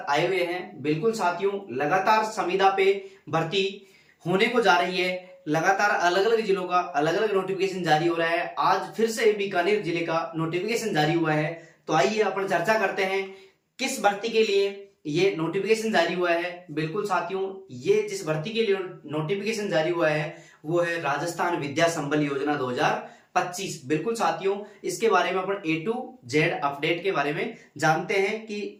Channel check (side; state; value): both; identical; correlation 1.00